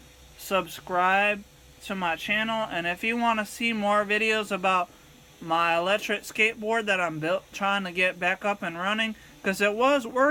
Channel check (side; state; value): both; identical; correlation 1.00